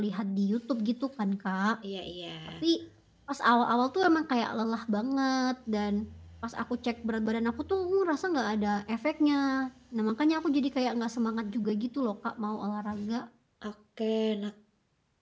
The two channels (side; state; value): both; identical; correlation 1.00